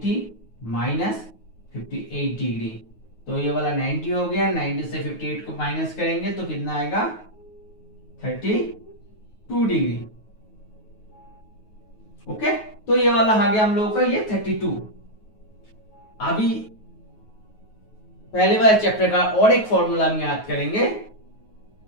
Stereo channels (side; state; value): right; late; 9.4 ms